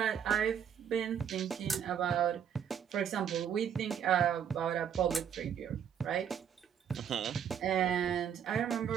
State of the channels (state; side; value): quieter; left; 8.5 dB